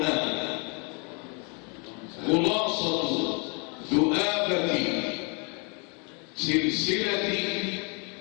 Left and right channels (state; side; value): quieter; right; 34.5 dB